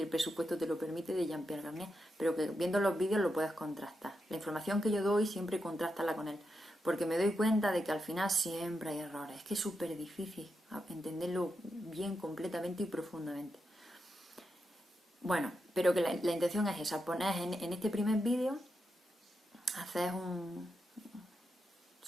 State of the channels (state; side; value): normal; both; correlation 0.86